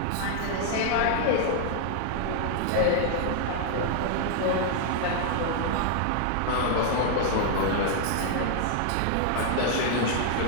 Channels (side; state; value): both; different; correlation 0.00